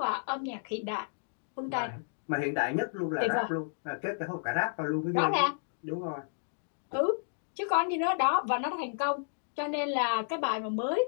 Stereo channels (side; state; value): right; silent; digital silence